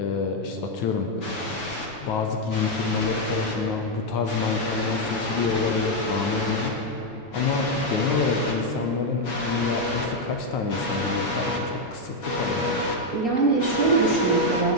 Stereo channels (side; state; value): right; late; 7.0 ms